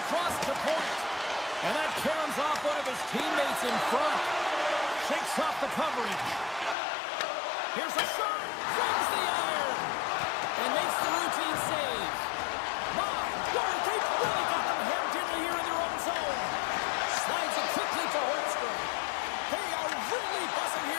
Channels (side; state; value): right; drops out; at 6.8 s